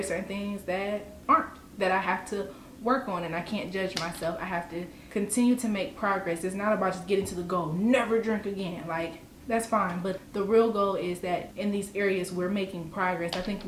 certain things that aren't, that I have to work on, and I can't judge myself. I have to continue to make progress. It's not about just getting to the goal, never drink again. Like, that's fine, but the real goal is that in these areas we're making progress. I think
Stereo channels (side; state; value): both; identical; correlation 1.00